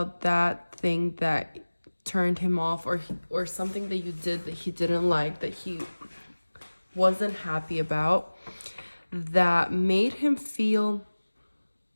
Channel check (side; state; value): both; inverted; correlation -1.00